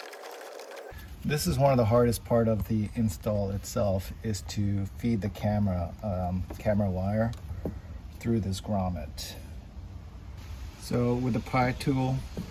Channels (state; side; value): identical; both; correlation 1.00